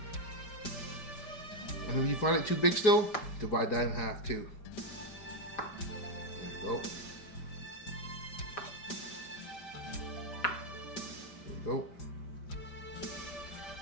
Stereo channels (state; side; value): late; right; 5.1 ms